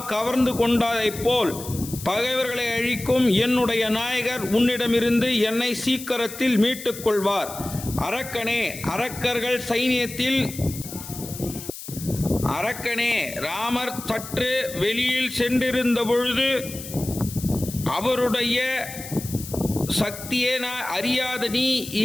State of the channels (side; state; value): left; noise; hiss, 12 dB below the sound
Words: கவர்ந்து கொண்டதைப் போல் பகைவர்களை அழிக்கும் என்னுடைய நாயகர் உன்னிடமிருந்து என்னை சீக்கிரத்தில் மீட்டுக் கொள்வார். அரக்கனே, அரக்கனே, ராமர் சற்று வெளியில் சென்றிருந்த பொழுது அவருடைய சக்தியே நான் அறியாத நீ